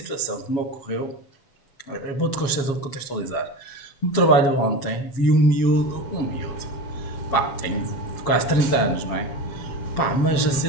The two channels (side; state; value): right; late; 7.3 ms